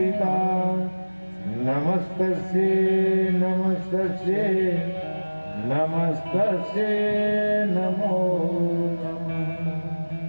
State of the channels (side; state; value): both; inverted; correlation -1.00